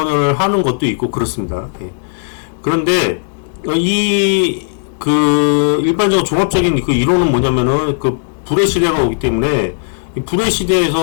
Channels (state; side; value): silent; right; digital silence